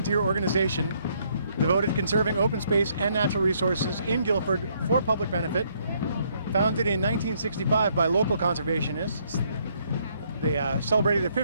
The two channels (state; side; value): inverted; both; correlation -0.70